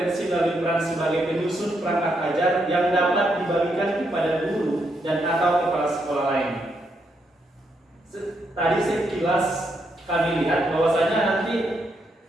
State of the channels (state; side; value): normal; both; correlation 0.78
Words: melalui peran sebagai penyusun perangkat ajar yang dapat dibagikan kepada guru dan atau kepala sekolah lain. Tadi sekilas kami lihat bahwasanya nanti